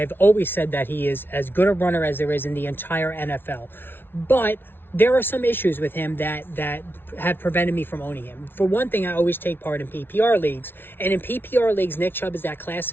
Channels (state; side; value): late; right; 0.11 ms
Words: always said that he is as good a runner as there is in the entire NFL. But there are some issues with him that have prevented me from owning him. For one thing, I always take part in PPR leagues. And in PPR leagues, Nick Chubb is that